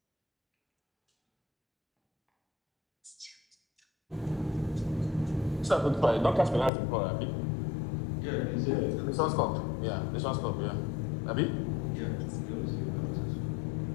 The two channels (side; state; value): right; drops out; at 6.7 s